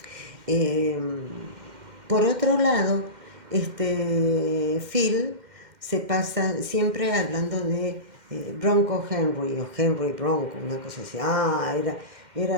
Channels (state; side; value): late; left; 2.1 ms